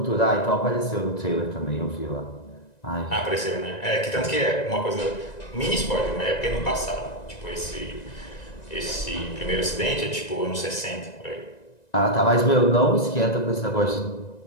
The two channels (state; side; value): late; right; 1.9 ms